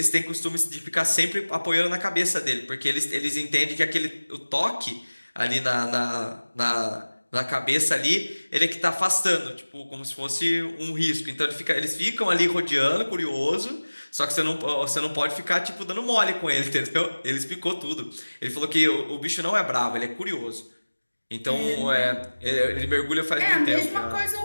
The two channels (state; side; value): inverted; both; correlation -1.00